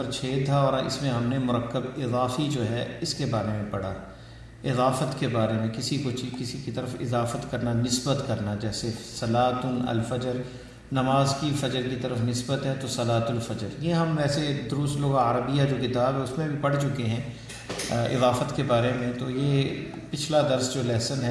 6 تھا، اور اس میں ہم نے مرکب اضافی جو ہے اس کے بارے میں پڑھا، اضافت کے بارے میں، کسی کی طرف اضافت کرنا، نسبت کرنا، جیسے صلاۃ الفجر، نماز کی فجر کی طرف نسبت ہے تو صلاۃ الفجر۔ یہ ہم ویسے دروس لغہ عربیہ جو کتاب ہے اس میں بھی پڑھ چکے ہیں اضافت کے بارے میں۔ تو یہ پچھلا درس جو لیسن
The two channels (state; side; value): identical; both; correlation 1.00